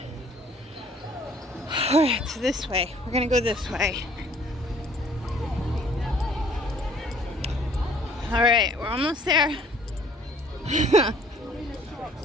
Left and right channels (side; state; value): both; normal; correlation 0.58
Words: All right, so this way. We're gonna go this way. All right, we're almost there.